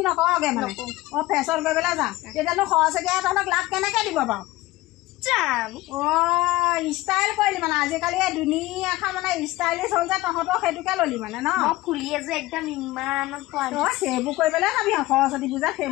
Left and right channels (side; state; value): right; quieter; 18.2 dB